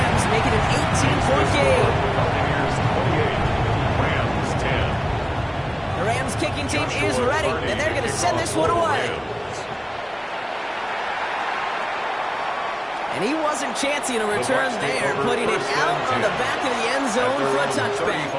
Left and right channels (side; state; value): both; identical; correlation 1.00